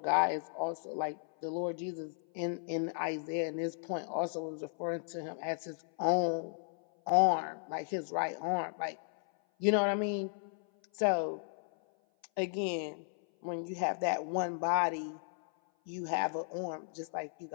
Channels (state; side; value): silent; right; 55 dB below the other